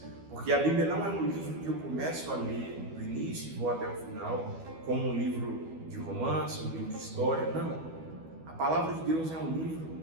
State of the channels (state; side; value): late; left; 12 ms